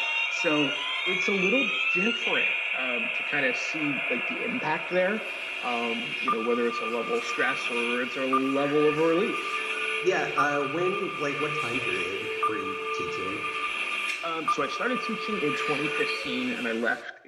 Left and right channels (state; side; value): identical; both; correlation 1.00